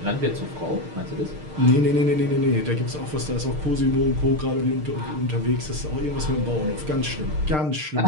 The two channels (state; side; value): late; left; 6.6 ms